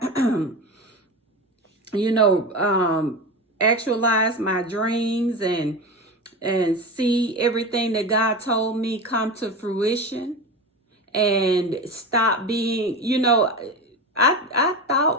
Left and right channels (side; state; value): both; normal; correlation 0.25